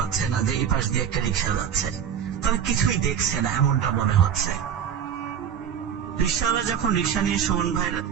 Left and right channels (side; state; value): left; quieter; 8.5 dB